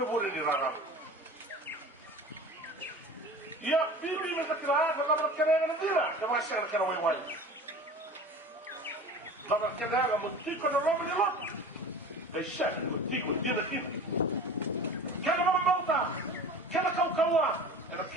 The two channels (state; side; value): normal; both; correlation 0.38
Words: more ni rara. Ya, bibi me sakira, la barkana na dira, ka ma sa ka wai wai. La barkana ga mutiko na romo ni lot. Ai sha, mutiko dina kin. Kana ma mauta, kana kaukawa, era